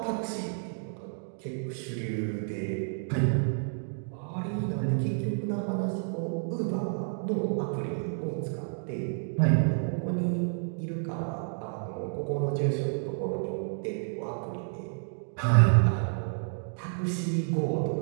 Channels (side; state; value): left; silent; digital silence